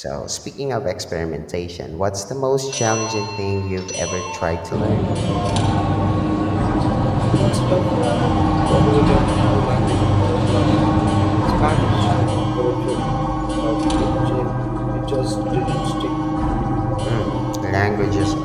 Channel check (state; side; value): identical; both; correlation 1.00